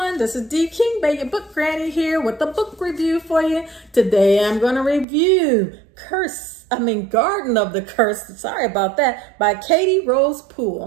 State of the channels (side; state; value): left; drops out; at 5.1 s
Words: this is D King Bay, your book granny here with a book review for you. Today I'm going to review Garden of the Curse, sorry about that, by Katy Rose